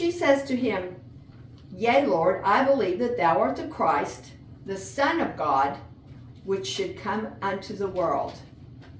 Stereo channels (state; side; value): identical; both; correlation 1.00